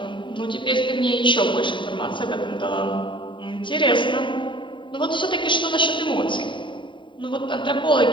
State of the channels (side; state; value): right; late; 0.23 ms